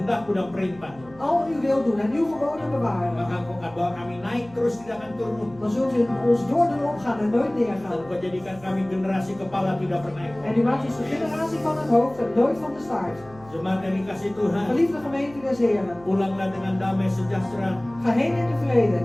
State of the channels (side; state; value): right; noise; hum, 22 dB below the sound